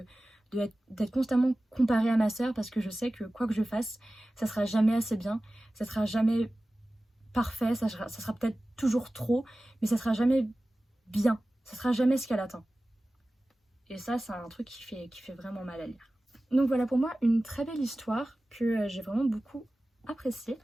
d'être constamment comparée à ma sœur parce que je sais que quoi que je fasse, ça sera jamais assez bien, ça sera jamais parfait, ça sera peut-être toujours trop, mais ça sera jamais bien, ça sera jamais ce qu'elle attend. Et ça, c'est un truc qui fait vraiment mal à lire. Donc voilà pour moi une très belle histoire que j'ai vraiment beaucoup appréciée.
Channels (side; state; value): both; normal; correlation 0.96